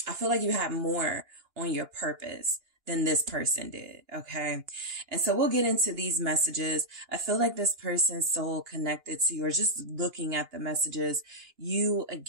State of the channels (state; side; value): late; left; 2.9 ms